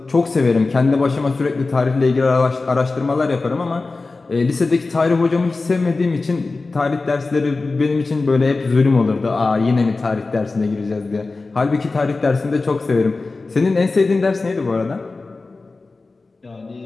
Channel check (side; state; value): right; quieter; 3.7 dB